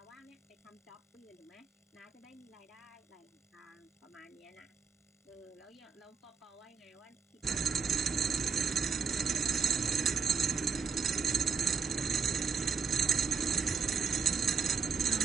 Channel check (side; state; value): left; quieter; 6.0 dB